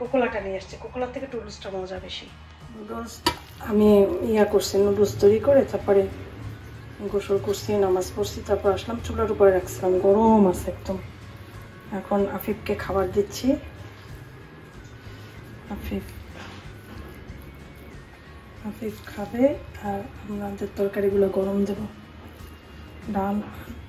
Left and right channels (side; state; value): both; identical; correlation 1.00